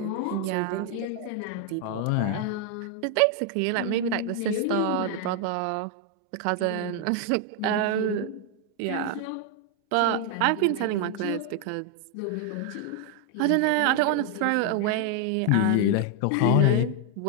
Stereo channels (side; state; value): both; different; correlation 0.00